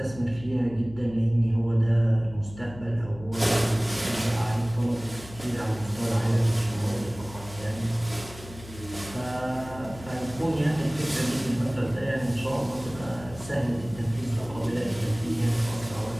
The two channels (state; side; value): noise; left; hum, 16 dB below the sound